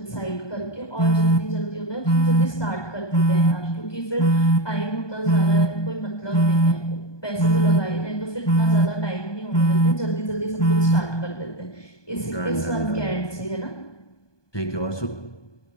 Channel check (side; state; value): right; late; 1.2 ms